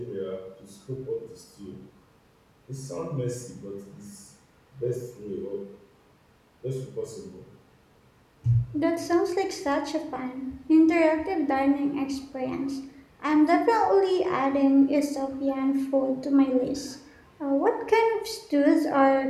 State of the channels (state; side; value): identical; both; correlation 1.00